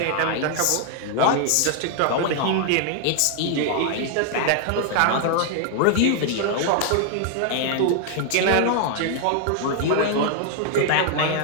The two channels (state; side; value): different; both; correlation 0.00